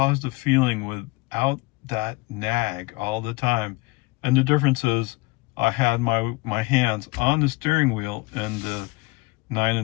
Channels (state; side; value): quieter; right; 24.1 dB